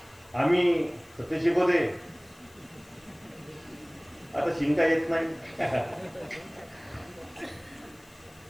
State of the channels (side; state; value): left; noise; hiss, 26 dB below the sound